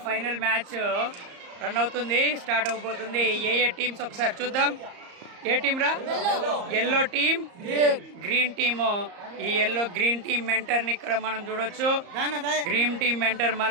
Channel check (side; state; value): left; late; 34 ms